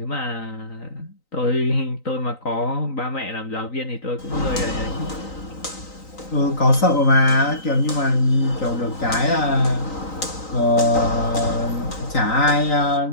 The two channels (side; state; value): right; late; 3.9 ms